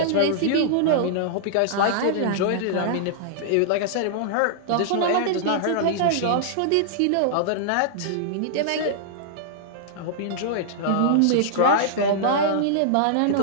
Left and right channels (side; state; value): both; different; correlation -0.01